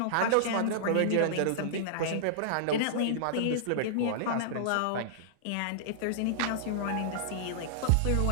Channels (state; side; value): different; both; correlation -0.02